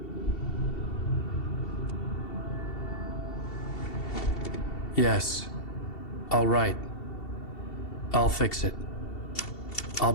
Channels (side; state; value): right; late; 2.7 ms